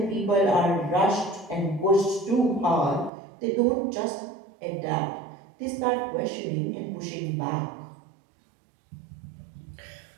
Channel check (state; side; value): drops out; left; at 3.1 s